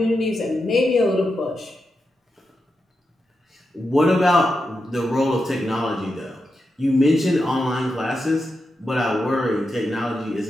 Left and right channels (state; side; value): normal; both; correlation 0.88